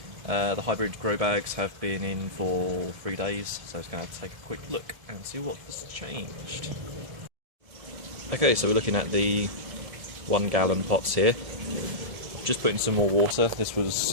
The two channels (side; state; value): left; late; 1.7 ms